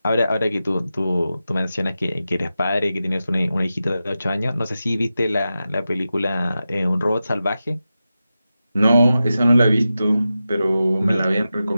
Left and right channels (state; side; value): inverted; both; correlation -0.92